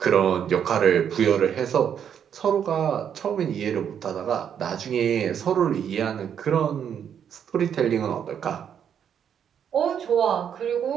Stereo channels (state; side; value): quieter; left; 8.5 dB